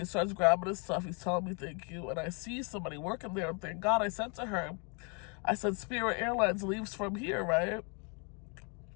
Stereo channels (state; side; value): quieter; right; 35.6 dB